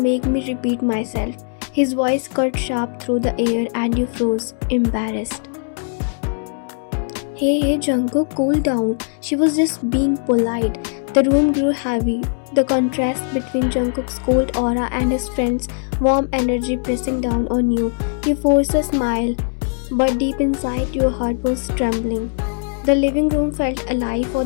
make me repeat myself. His voice cut sharp through the air and you froze, embarrassed. Hey, Jungkook, cool down. She was just being polite. The room grew heavy, the contrast between Jungkook's cold aura and his friend's warm energy pressing down on you. You forced a smile, but deep inside your heart was trembling. The living room felt alive for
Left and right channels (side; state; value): right; silent; digital silence